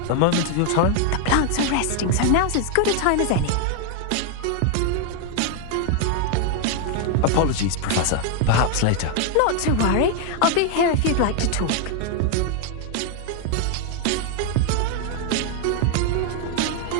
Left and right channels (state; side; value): different; both; correlation 0.00